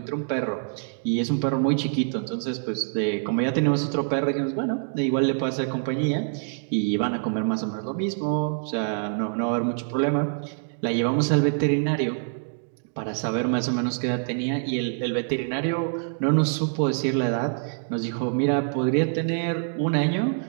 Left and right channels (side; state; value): left; silent; digital silence